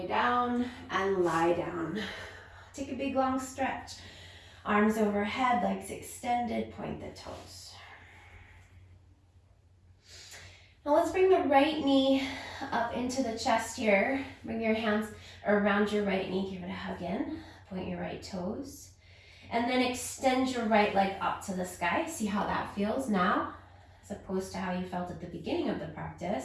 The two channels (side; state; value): both; identical; correlation 1.00